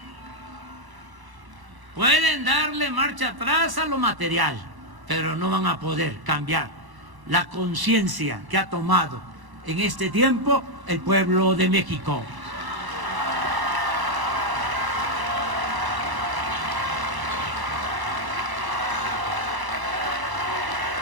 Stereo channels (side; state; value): left; late; 1.1 ms